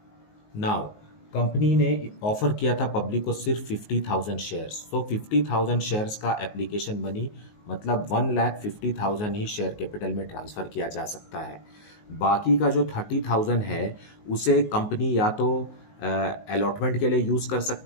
Now company ने ऑफर किया था पब्लिक को सिर्फ 50,000 शेयर्स। तो 50,000 शेयर्स का एप्लीकेशन मनी मतलब 1,50,000 ही शेयर कैपिटल में ट्रांसफ़र किया जा सकता है। बाकी का जो 30,000 है उसे कंपनी या तो अलॉटमेंट के लिए यूज़ कर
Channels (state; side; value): late; right; 19 ms